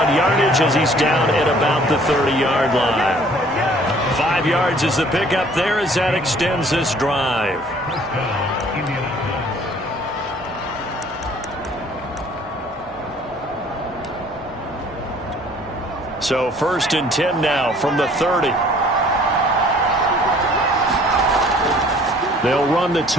yardage as he's down at about the 30-yard line. 5 yards is the pickup there as that extends this drive. So 1st and 10 now from the 30. They'll run the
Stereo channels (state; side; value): normal; both; correlation 0.55